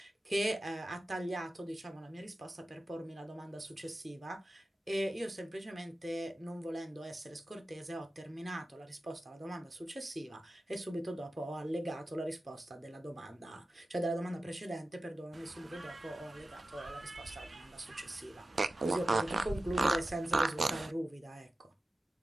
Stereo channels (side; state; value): both; normal; correlation 0.94